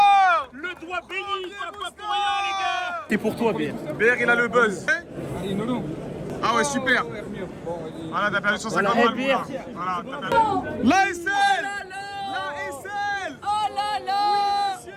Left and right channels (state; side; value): identical; both; correlation 1.00